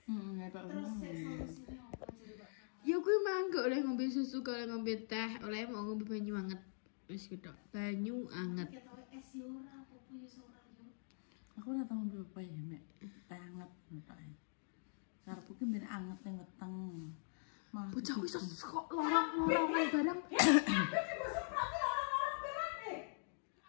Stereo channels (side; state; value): right; silent; digital silence